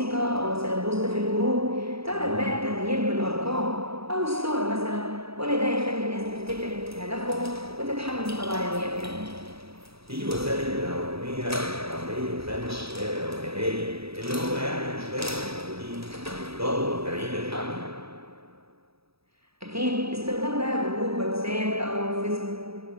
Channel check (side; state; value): left; late; 0.77 ms